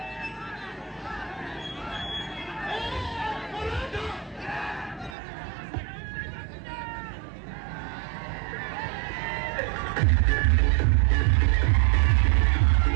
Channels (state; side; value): drops out; left; at 5.2 s